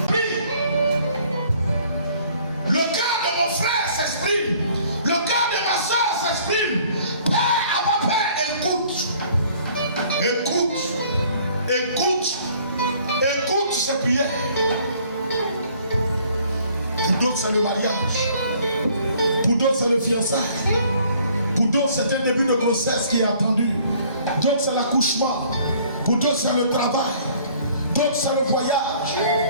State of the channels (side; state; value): both; inverted; correlation -0.58